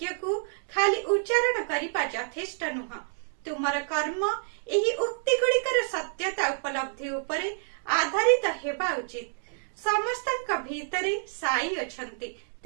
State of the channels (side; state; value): left; silent; digital silence